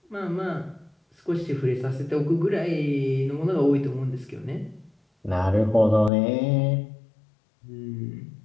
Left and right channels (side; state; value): right; drops out; at 6.1 s